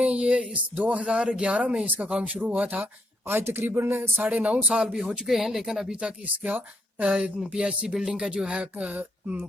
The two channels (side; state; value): both; normal; correlation 0.74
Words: یہ اس 2011 میں اس کا کام شروع ہوا تھا. آج تقریباً 9.5 سال بھی ہو چکے ہیں، لیکن ابھی تک اس کا پی ایچ سی بلڈنگ کا جو ہے